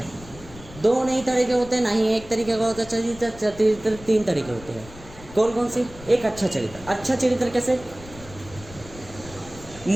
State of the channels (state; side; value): noise; left; rumble, 17 dB below the sound